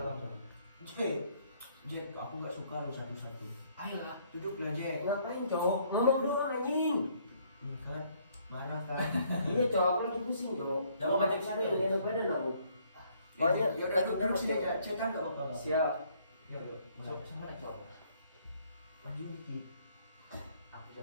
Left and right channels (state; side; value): inverted; both; correlation -0.65